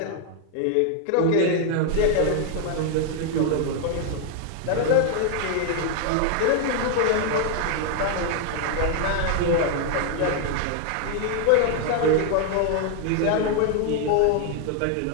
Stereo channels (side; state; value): both; different; correlation 0.00